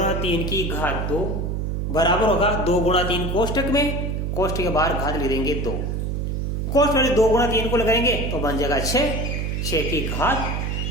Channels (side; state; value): right; noise; hum, 1 dB below the sound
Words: 3 की घात 2 बराबर होगा 2 गुणा 3 कोष्टक में, कोष्टक के बाहर घात लिख देंगे 2, कोष्टक में 2 गुणा 3 को लगाएंगे तो बन जाएगा 6, 6 की घात